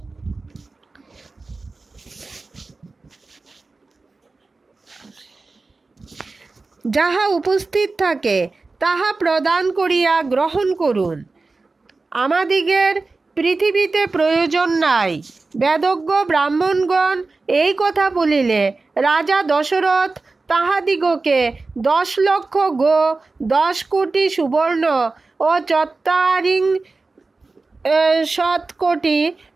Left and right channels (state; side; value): quieter; left; 3.7 dB